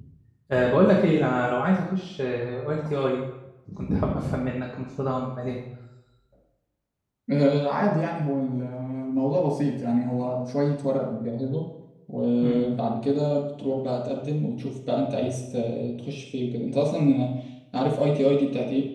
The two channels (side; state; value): both; identical; correlation 1.00